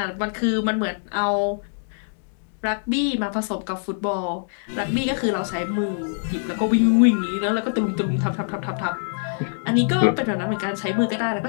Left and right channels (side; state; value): right; silent; digital silence